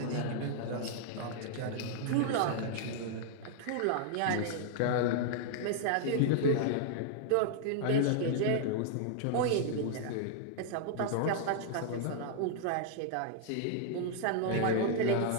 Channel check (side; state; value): both; different; correlation -0.01